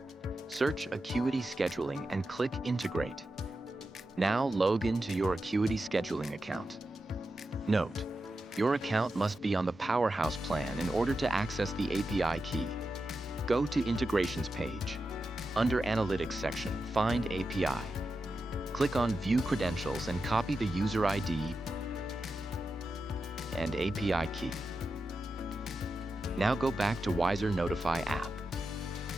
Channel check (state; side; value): normal; both; correlation 0.89